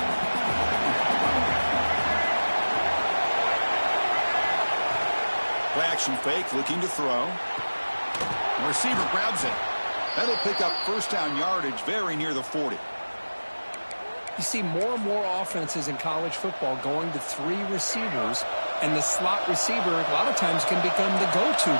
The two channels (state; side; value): inverted; both; correlation -1.00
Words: Play action fake, looking to throw. The receiver grabs it. That'll pick up first down yardage very near the 40. You see more and more offenses in college football going to three receivers, and the slot receiver a lot of times can become the go-to